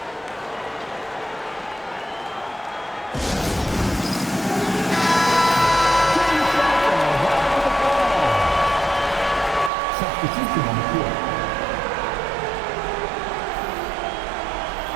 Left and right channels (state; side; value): drops out; left; at 9.7 s